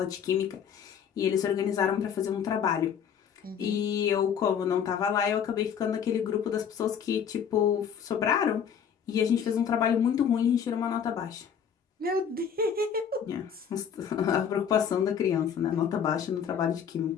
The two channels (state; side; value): quieter; right; 7.8 dB